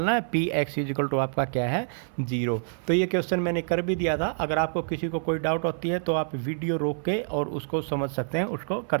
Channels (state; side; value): silent; left; 59 dB below the other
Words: है, p x is equal to आपका क्या है? 0। तो ये क्वेश्चन मैंने कर भी दिया था। अगर आपको किसी को कोई डाउट होती है तो आप वीडियो रोक के और उसको समझ सकते हैं, उसको कर